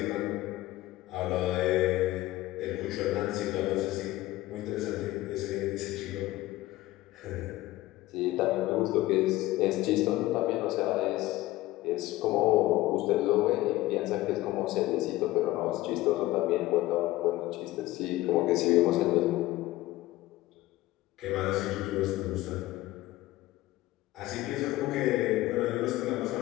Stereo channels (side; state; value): right; quieter; 17.1 dB